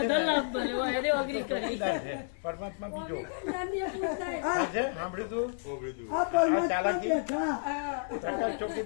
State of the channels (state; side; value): silent; right; 57 dB below the other